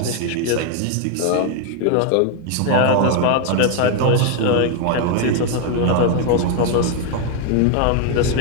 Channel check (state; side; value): different; both; correlation 0.01